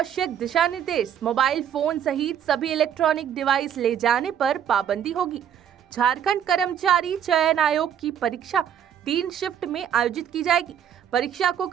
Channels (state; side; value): quieter; left; 9.2 dB